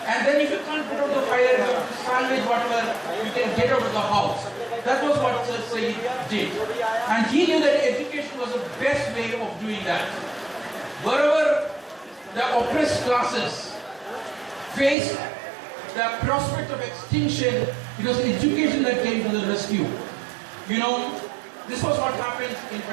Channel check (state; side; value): drops out; left; at 15.0 s